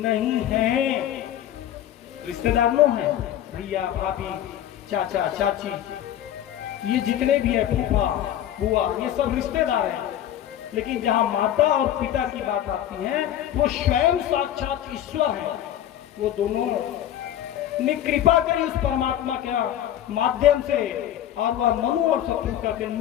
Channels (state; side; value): quieter; right; 11.5 dB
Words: है, रिश्तेदार नो है, भैया भाभी चाचा चाची, ये जितने भी है, फूफा बुआ, ये सब रिश्तेदार हैं। लेकिन जहां माता और पिता की बात आती है, वो स्वयं साक्षात ईश्वर है। वो दोनों ने कृपा करी उस परमात्मा के माध्यम से, और वह मनु और शत्रुघ्न के